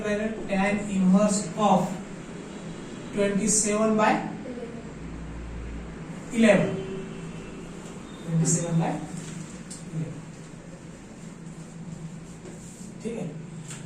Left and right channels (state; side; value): identical; both; correlation 1.00